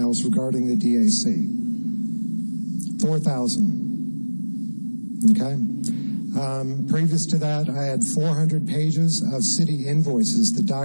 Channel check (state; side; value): inverted; both; correlation -1.00